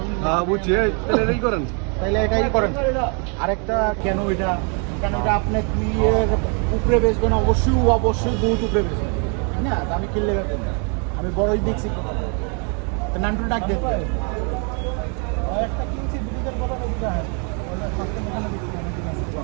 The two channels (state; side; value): quieter; left; 37.5 dB